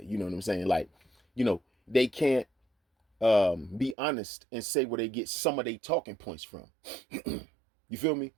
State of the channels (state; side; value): drops out; left; at 4.0 s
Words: You know what I'm saying? Like, they can't be honest and say where they get some of their talking points from. You feel me?